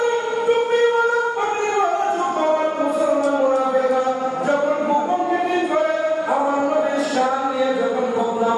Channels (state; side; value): identical; both; correlation 1.00